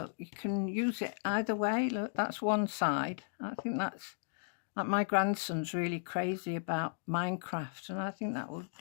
You can use it either way. Look, that's one side. I think that's like, my grandson's really crazy about Minecraft, and I think that would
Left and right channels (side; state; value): right; silent; digital silence